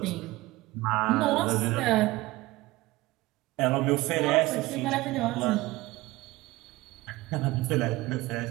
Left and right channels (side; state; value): left; quieter; 19.5 dB